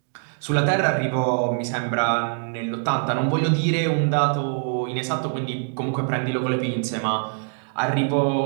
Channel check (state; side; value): silent; left; digital silence